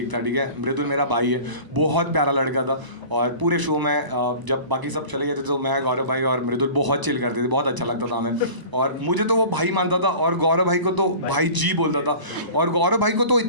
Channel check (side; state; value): left; late; 1.0 ms